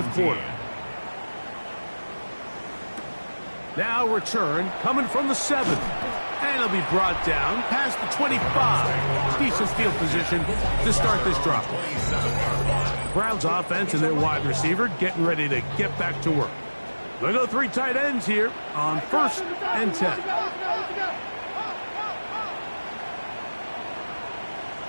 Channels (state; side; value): inverted; both; correlation -1.00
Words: quarter. Now return coming from the 7. And it'll be brought down past the 25. Decent field position to start this drive. Browns offense and their wide receiver getting ready to get back to work. They'll go 3 tight ends here on first and 10.